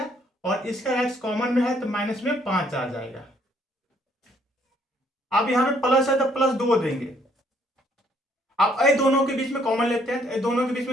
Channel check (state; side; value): normal; both; correlation 0.66